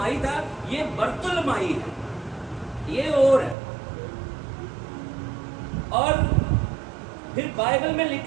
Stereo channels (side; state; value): left; drops out; at 3.6 s